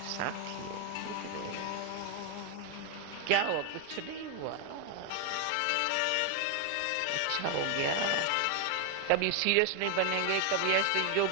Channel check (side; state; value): both; different; correlation 0.01